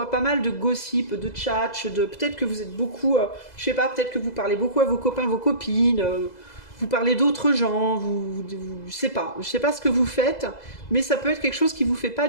pas mal de gossip, de tchatch, peut-être que vous êtes beaucoup, je sais pas, peut-être que vous parlez beaucoup à vos copains, vos copines, vous parlez d'autres gens, je sais pas ce que vous faites, mais ça peut être quelque chose qui vous fait pas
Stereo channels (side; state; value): right; late; 2.0 ms